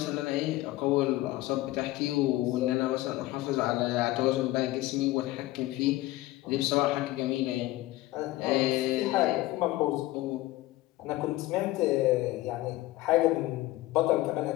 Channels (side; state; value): right; quieter; 17.7 dB